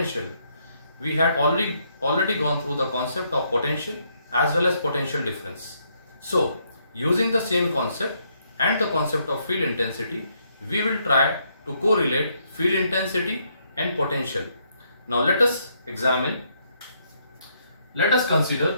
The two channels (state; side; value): inverted; both; correlation -0.74